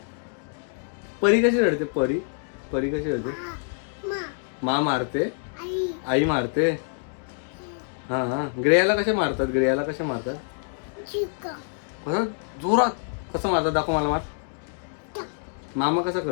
परी कशी रडते? परी कशी रडते? माँ मारते, आई मारते. हां, ग्रेयाला कसे मारतात? कसं जोरात कसं मारतात? दाखव मला. मामा कसा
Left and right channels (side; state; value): right; silent; digital silence